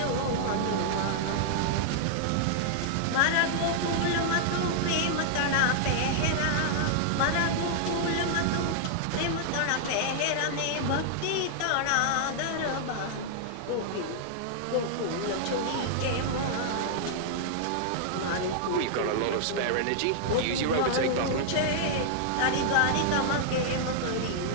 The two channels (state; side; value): different; both; correlation -0.01